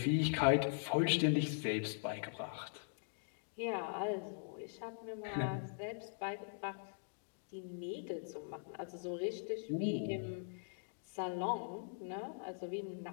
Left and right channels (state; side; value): silent; right; digital silence